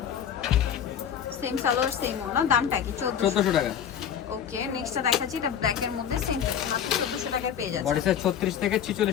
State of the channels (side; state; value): right; quieter; 8.6 dB